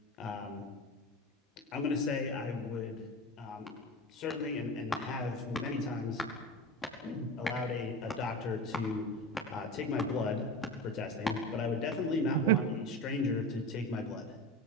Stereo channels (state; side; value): normal; both; correlation 0.28